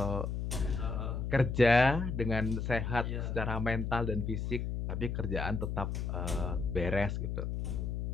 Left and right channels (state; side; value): noise; left; hum, 2 dB below the sound